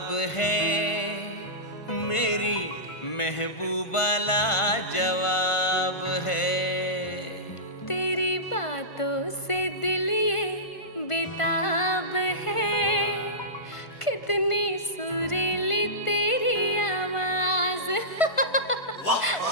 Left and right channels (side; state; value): right; late; 1.5 ms